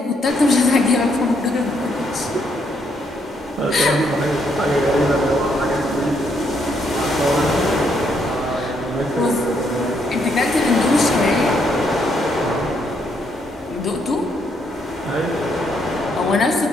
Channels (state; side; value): normal; both; correlation 0.74